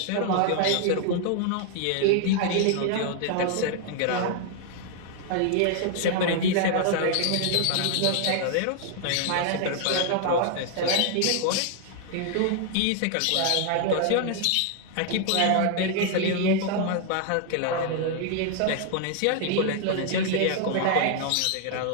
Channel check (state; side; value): different; both; correlation 0.00